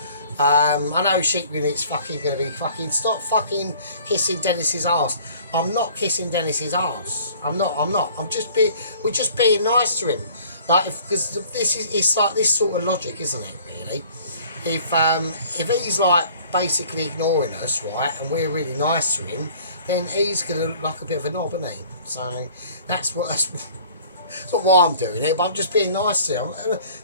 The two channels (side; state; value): both; inverted; correlation -0.52